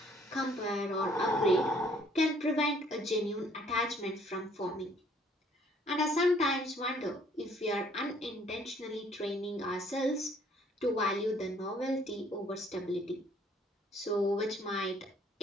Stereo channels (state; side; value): normal; both; correlation 0.61